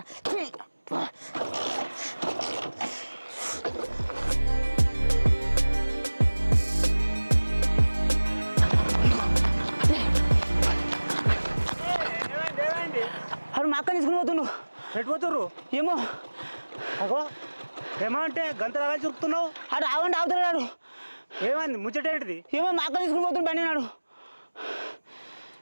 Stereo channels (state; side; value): inverted; both; correlation -1.00